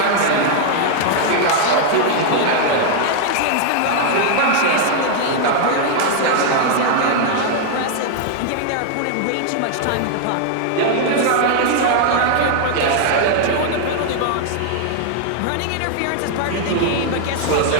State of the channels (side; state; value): both; different; correlation 0.00